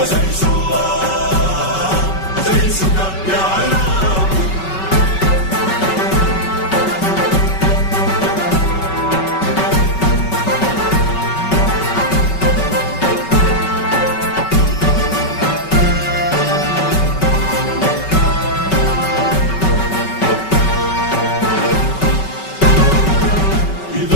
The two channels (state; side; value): late; right; 5.3 ms